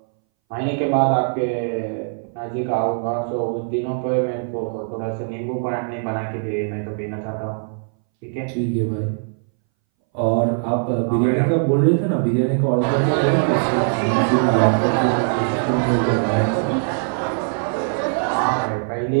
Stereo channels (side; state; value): left; silent; 62 dB below the other